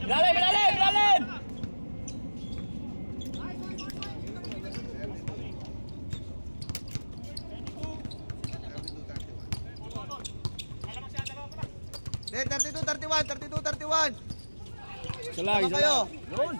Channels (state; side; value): inverted; both; correlation -1.00